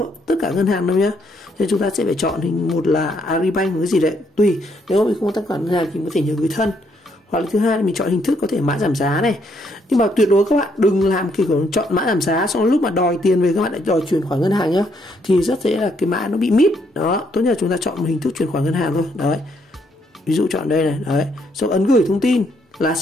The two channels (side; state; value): both; normal; correlation 0.72